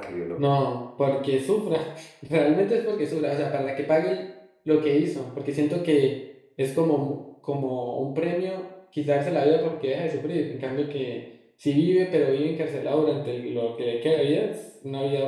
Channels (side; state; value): both; identical; correlation 1.00